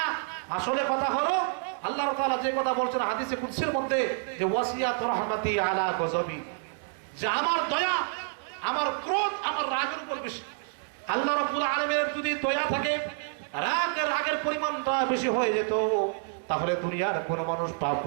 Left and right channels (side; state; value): left; silent; 59 dB below the other